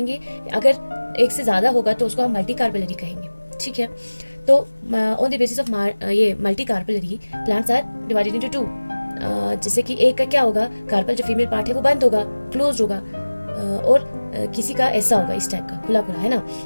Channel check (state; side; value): inverted; both; correlation -1.00